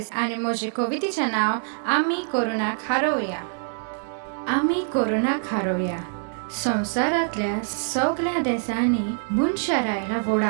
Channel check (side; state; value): left; silent; 62 dB below the other